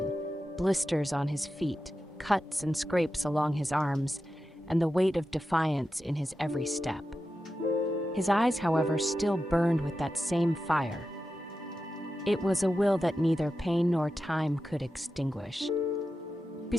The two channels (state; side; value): normal; both; correlation 0.91